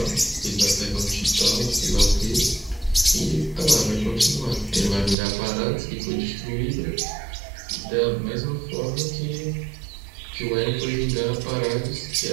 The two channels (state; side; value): drops out; left; at 5.2 s